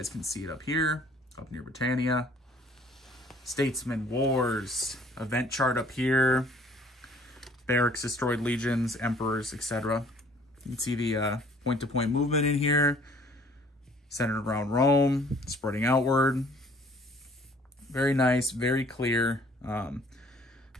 can see it up here, up near Britannia. Statesman, wars, event chart up here. Barracks, destroyed legions, emperors, etc. You can see the point-to-point movement in here. Centered around Rome, spreading outward. Very nice, very clear.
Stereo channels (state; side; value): normal; both; correlation 0.56